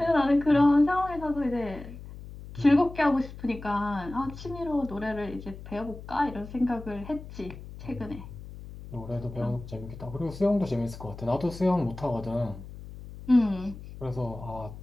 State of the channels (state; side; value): noise; left; hum, 14 dB below the sound